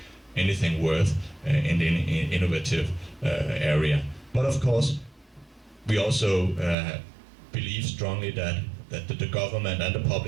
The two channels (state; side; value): drops out; left; at 6.8 s